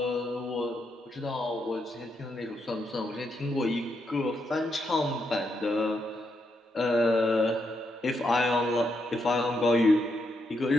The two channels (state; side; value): normal; both; correlation 0.80